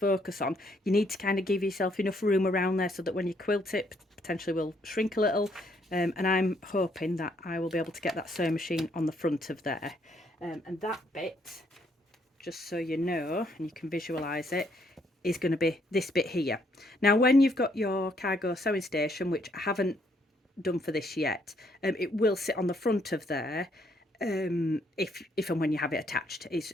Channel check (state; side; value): normal; both; correlation 0.70